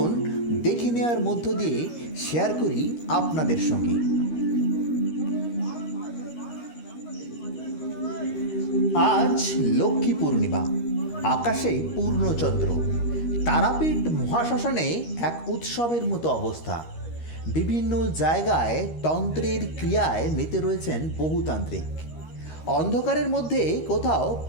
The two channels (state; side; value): late; right; 13 ms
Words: দেখে নেওয়ার মধ্য দিয়ে শেয়ার করি আপনাদের সঙ্গে। আজ লক্ষ্মী পূর্ণিমা, আকাশে পূর্ণচন্দ্র। তারাপীঠ মহাশ্মশানে এক উৎসবের মতো অবস্থা। বিভিন্ন জায়গায় তন্ত্রের ক্রিয়ায় মেতে রয়েছেন বহুতান্ত্রিক। অন্ধকারের মধ্যে কোথাও